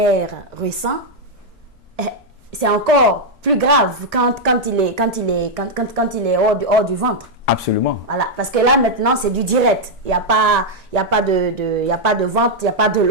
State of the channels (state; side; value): normal; both; correlation -0.02